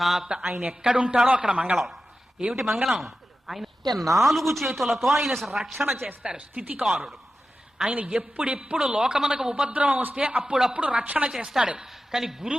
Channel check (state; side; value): normal; both; correlation 0.93